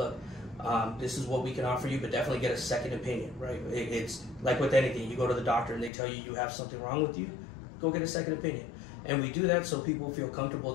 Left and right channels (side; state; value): right; drops out; at 5.9 s